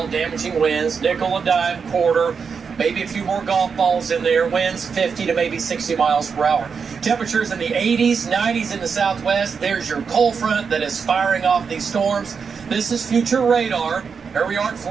damaging winds, nickel and dime, quarter, maybe a few more golf balls in there, winds 50 to maybe 60 miles per hour. Temperatures in the 80s, 90s in the southwest. There's your cold front that is firing off these storms. This is future radar. Here we are at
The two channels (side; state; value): left; quieter; 5.9 dB